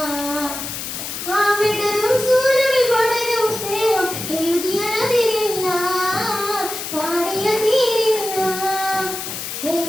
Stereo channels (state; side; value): noise; left; hiss, 6 dB below the sound